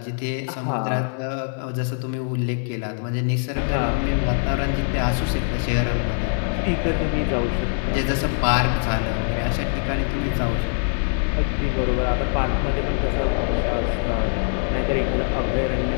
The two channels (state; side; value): silent; right; 63 dB below the other